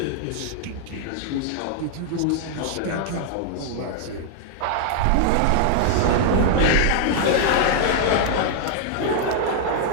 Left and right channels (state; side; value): different; both; correlation 0.00